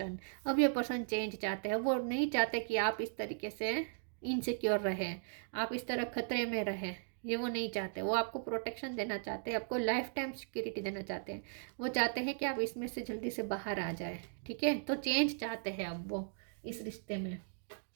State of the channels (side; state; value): left; silent; digital silence